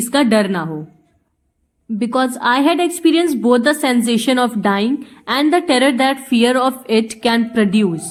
का डर ना हो। Because I had experience both the sensation of dying and the terror that fear of it can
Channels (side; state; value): both; identical; correlation 1.00